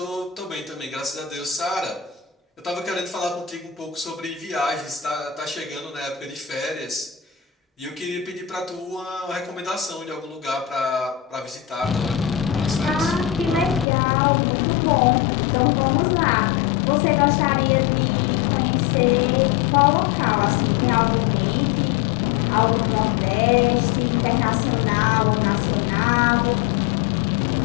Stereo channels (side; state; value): right; drops out; at 13.9 s